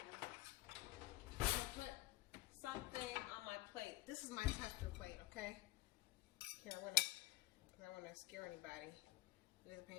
I'm gonna put something on my plate. This is my tester plate, okay? Here, I don't want to scare anybody. It is a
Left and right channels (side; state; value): right; quieter; 18.6 dB